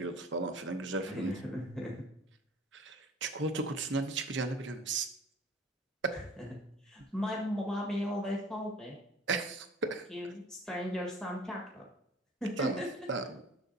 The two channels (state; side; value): normal; both; correlation 0.46